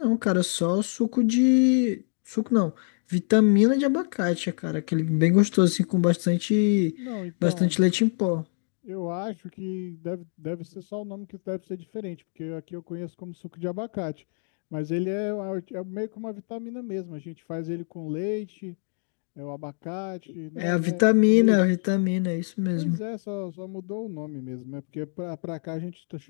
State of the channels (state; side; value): silent; right; 58 dB below the other